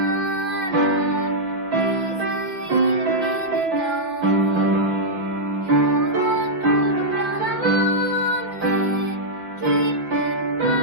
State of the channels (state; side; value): late; left; 5.4 ms